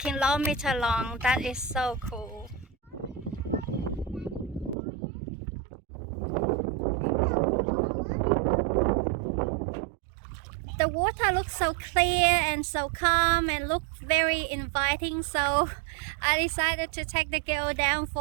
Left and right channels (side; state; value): left; drops out; at 4.8 s